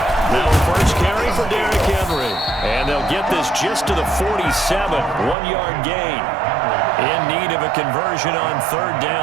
Now first carry for Derrick Henry. And they'll get this just to the 47. 1-yard gain. In need of a conversion on third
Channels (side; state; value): left; drops out; at 5.4 s